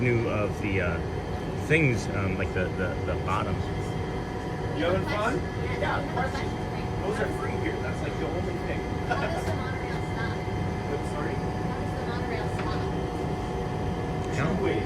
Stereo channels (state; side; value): identical; both; correlation 1.00